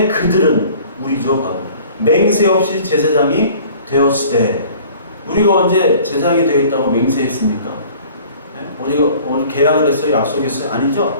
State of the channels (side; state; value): both; inverted; correlation -0.49